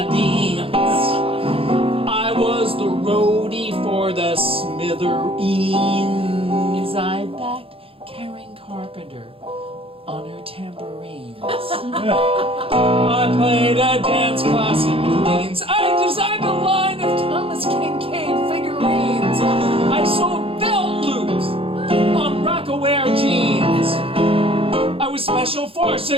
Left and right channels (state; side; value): late; left; 0.27 ms